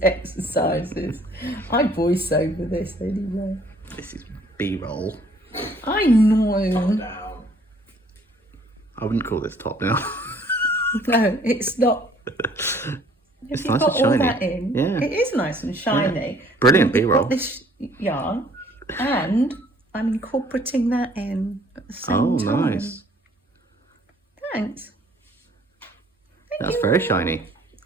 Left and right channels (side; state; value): both; normal; correlation 0.58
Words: exercises. I voice over this anyway. This is B-roll. I know. Top down. I wouldn't call this top down. No, it's not. It's If nice got and shiny. all that in, Yeah. it is nice and shiny. Yeah. Brilliant We've B-roll. got this yarn, and I'm incorporating that in at the same Oh, time. nice. Thanks. Thank That's you. very shiny.